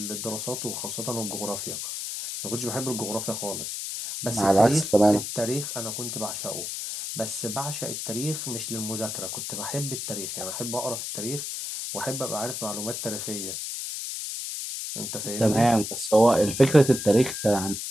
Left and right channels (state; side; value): noise; left; hiss, 5 dB below the sound